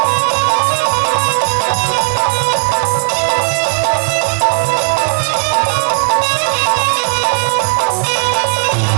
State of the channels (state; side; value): silent; left; digital silence